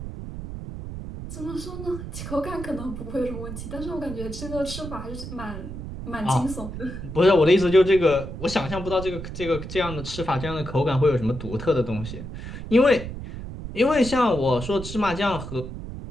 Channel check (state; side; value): noise; right; rumble, 9 dB below the sound